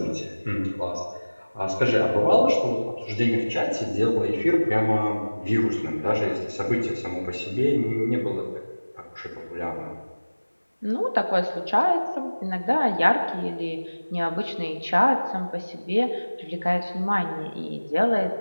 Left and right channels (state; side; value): inverted; both; correlation -1.00